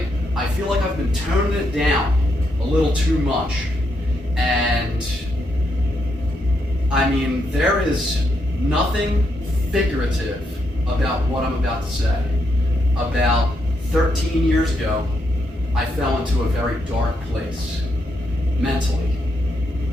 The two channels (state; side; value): normal; both; correlation 0.79